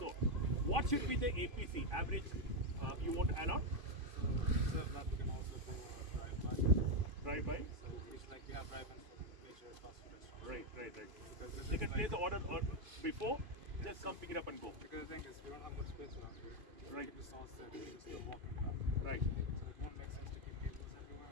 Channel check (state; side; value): late; left; 2.5 ms